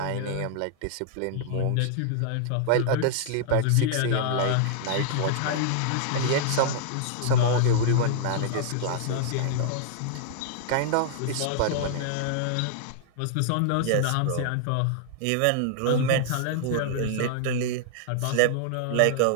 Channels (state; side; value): different; both; correlation -0.01